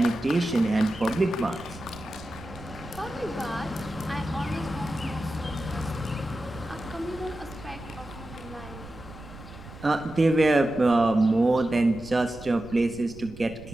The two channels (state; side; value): noise; right; rumble, 16 dB below the sound